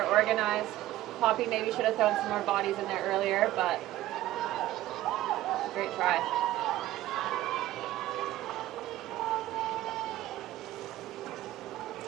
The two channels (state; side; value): quieter; left; 15.0 dB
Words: organized. Poppy maybe should have thrown some more bodies in there earlier, but great try.